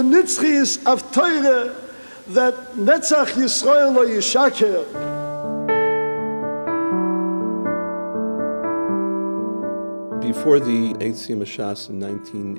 nitzchias of Torah that Netzach Yisrael lo yishaker. Before the Siyum Hashas in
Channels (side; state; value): both; inverted; correlation -1.00